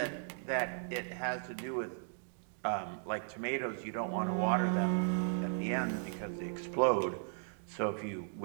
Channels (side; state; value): left; silent; digital silence